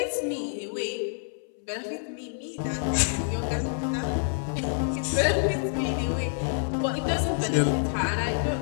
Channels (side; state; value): right; silent; 60 dB below the other